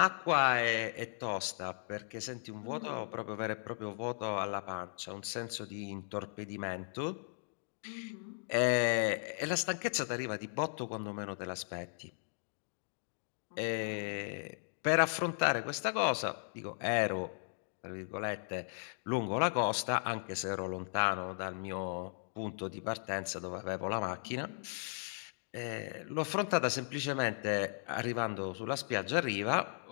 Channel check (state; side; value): silent; right; digital silence